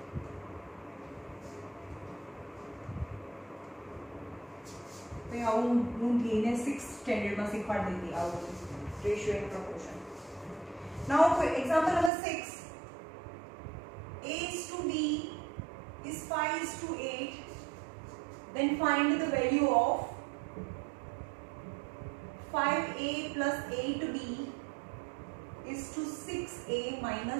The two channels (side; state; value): left; drops out; at 12.1 s